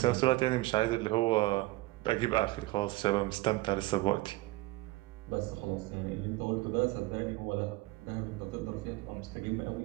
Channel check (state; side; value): quieter; left; 19.9 dB